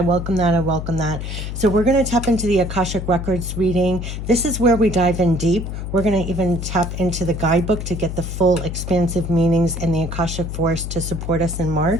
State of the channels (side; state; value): left; noise; hum, 6 dB below the sound